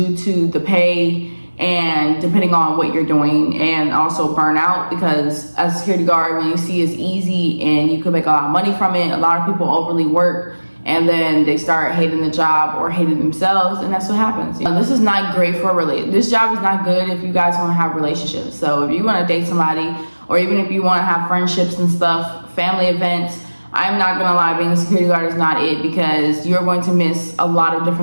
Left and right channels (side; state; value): both; inverted; correlation -1.00